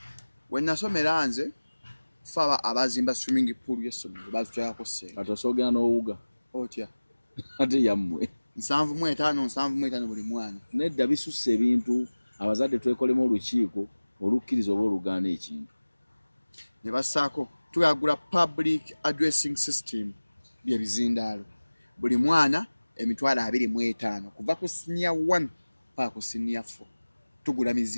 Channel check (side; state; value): both; inverted; correlation -1.00